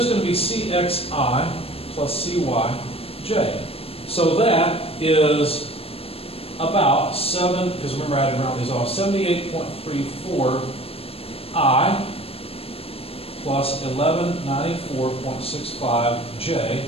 going to be CXI plus CYJ. So that is about 7, because remember I had to round these off, 78.34 I plus 1194.65 J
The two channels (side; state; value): right; late; 0.28 ms